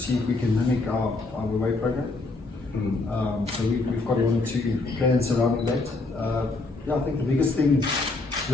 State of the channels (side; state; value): right; quieter; 3.3 dB